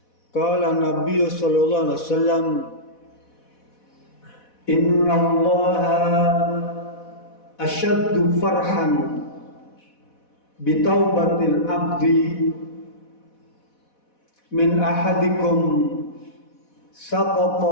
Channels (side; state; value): right; late; 4.1 ms